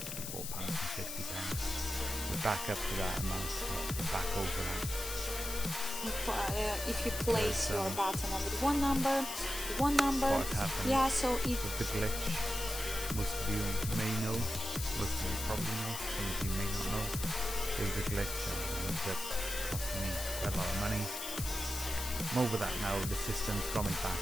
We're back up to that amount, back over that. If you place your button on with one number, what happened yeah, so it with the glitch, most of you may know, most of you probably know, some of you may not know. There was a glitch and it ended up costing me quite a lot of money. I'm over that now, the system's got me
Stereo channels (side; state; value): left; noise; hiss, 6 dB below the sound